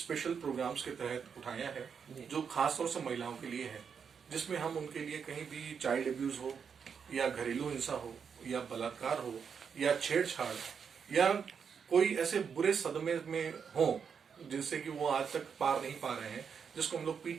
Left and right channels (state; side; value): quieter; left; 6.6 dB